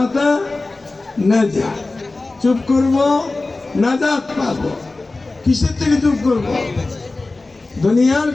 নাজাত, চুপ করব নাজাত পাবো। কিসের থেকে চুপ করব? দুনিয়ার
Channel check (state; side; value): quieter; right; 3.3 dB